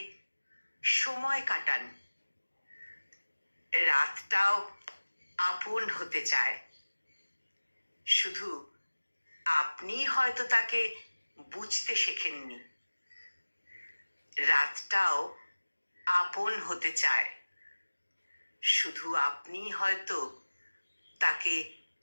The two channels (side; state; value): both; inverted; correlation -1.00